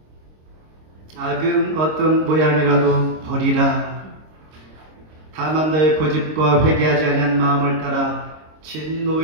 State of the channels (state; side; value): late; left; 26 ms